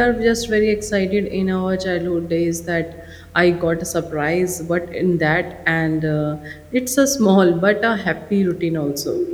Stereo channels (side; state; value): both; identical; correlation 1.00